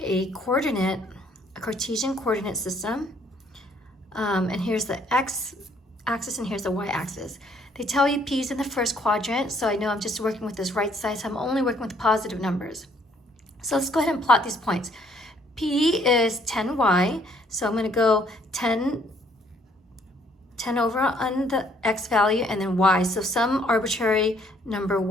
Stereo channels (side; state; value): both; normal; correlation 0.64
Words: a Cartesian coordinate system, and here's the X axis and here's the Y axis. They tell you P is in the first quadrant, so I know I'm just working with this right side, so I'm only working with positive numbers. So let's go ahead and plot these points. P is 10y, so I'm going to go 10 over on the x value and then y, so some arbitrary number